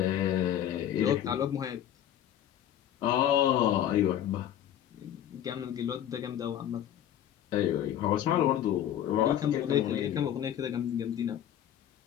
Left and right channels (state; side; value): quieter; right; 10.9 dB